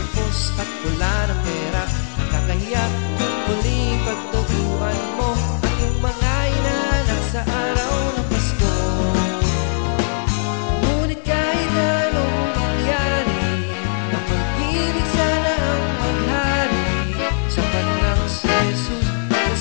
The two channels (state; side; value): silent; right; digital silence